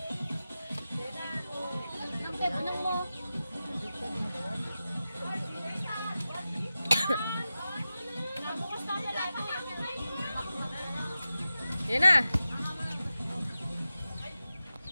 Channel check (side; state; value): both; inverted; correlation -0.93